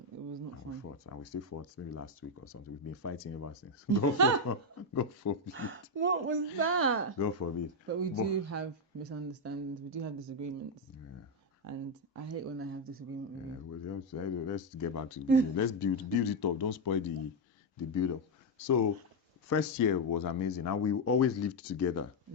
was not And fun. we fought, and we still fought maybe last week or something. We've been fighting ever since. God forbid. What was that? God forbid. But we do have misunderstandings. We do have disagreements. Yeah. And I hate when I have disagreement with you. Well, let's get back to the beginning. Let's build it up. Don't spoil the build up. So first year was amazing, and we always lived together.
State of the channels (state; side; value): normal; both; correlation 0.03